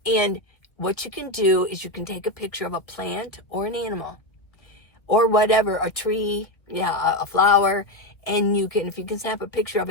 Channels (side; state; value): right; late; 1.4 ms